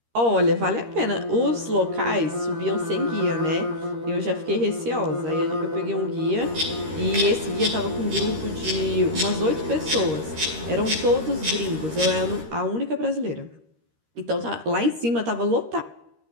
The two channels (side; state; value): left; late; 13 ms